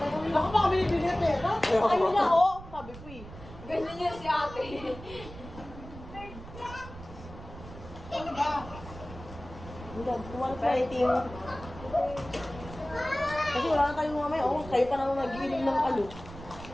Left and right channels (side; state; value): right; noise; rumble, 14 dB below the sound